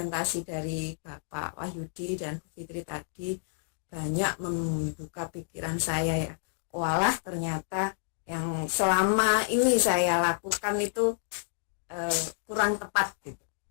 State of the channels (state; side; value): silent; right; digital silence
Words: dari Bapak Wahyudi dan Bu Fitri tadi, banyak membuka pikiran saya ya. Walah, ternyata yang selama ini saya lakukan itu kurang tepat gitu.